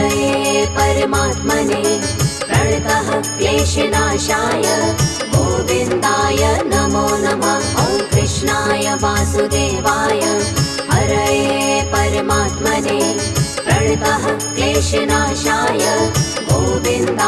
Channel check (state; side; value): identical; both; correlation 1.00